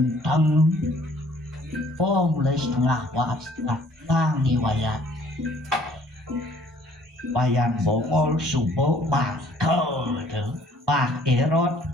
Oh mulai setengah langi wayang bongol subuh bakal Pak Erot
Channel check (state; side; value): normal; both; correlation 0.58